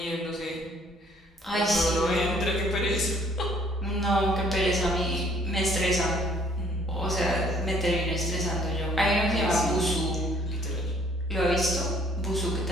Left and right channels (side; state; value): both; normal; correlation 0.60